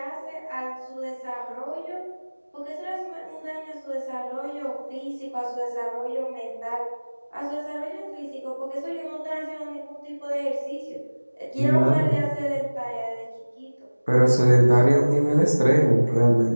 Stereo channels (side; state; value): both; inverted; correlation -1.00